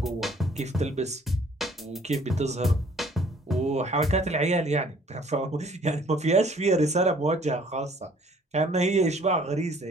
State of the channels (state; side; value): normal; both; correlation 0.57